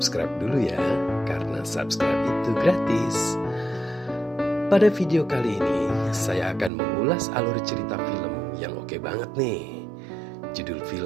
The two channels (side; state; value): left; drops out; at 6.7 s